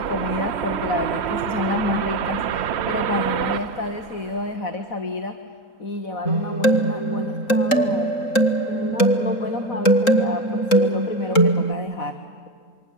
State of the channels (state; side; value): late; right; 3.7 ms